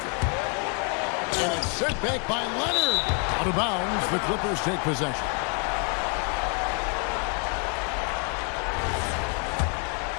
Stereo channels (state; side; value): quieter; right; 38.0 dB